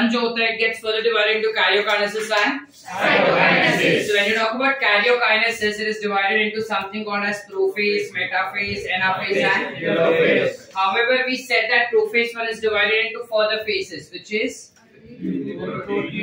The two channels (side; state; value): both; identical; correlation 1.00